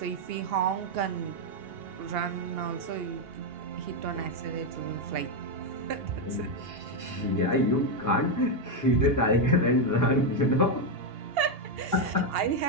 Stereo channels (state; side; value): late; left; 2.8 ms